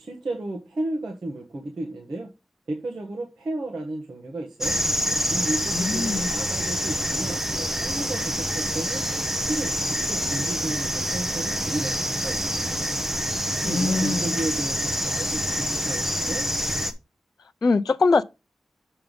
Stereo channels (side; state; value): both; normal; correlation 0.82